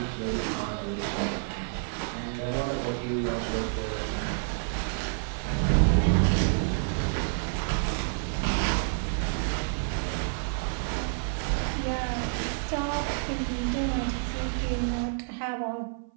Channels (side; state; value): left; silent; 57 dB below the other